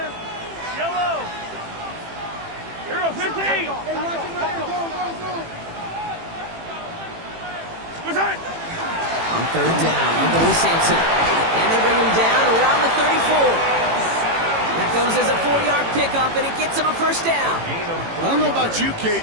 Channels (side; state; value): left; late; 18 ms